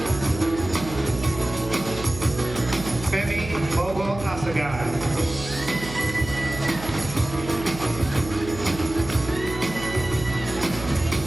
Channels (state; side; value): noise; right; hum, 11 dB below the sound